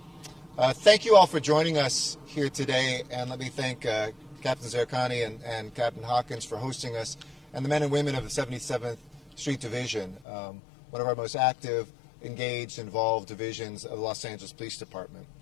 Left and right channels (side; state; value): right; drops out; at 10.2 s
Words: Thank you all for joining us here today, and let me thank Captain Zerkani and Captain Hawkins for hosting us, and the men and women of the 77th Street Division, one of our most active, engaged, involved divisions of the Los Angeles Police Department.